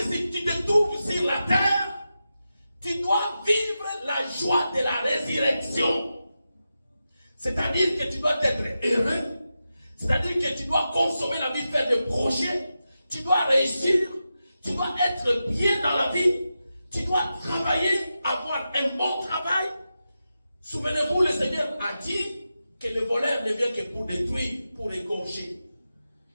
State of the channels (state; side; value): inverted; both; correlation -0.90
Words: si tu te trouves sur la terre, tu dois vivre la joie de la résurrection. C'est-à-dire que tu dois être heureux. C'est-à-dire que tu dois consommer la vie, faire des projets. Tu dois réussir. Tu dois être bien dans la vie. Tu dois travailler, avoir un bon travail. Souvenez-vous, le Seigneur a dit que le voleur ne vient que pour détruire, pour égorger,